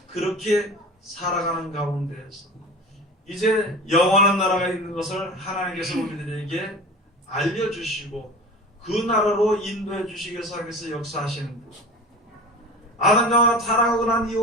그렇게 살아가는 가운데에서 이제 영원한 나라가 있는 것을 하나님께서 우리들에게 알려주시고 그 나라로 인도해 주시기 위해서 하나님께서 역사하시는 것. 아담과 타락하고 난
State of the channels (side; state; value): both; normal; correlation 0.35